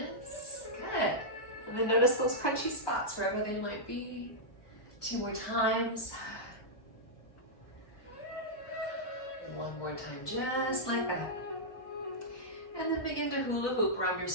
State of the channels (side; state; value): right; late; 1.2 ms